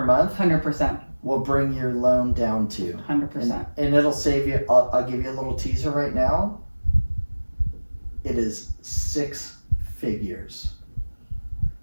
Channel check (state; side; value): inverted; both; correlation -1.00